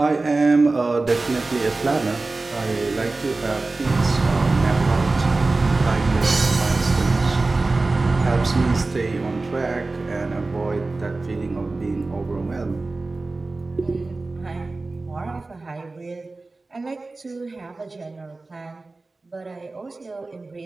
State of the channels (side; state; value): left; quieter; 3.4 dB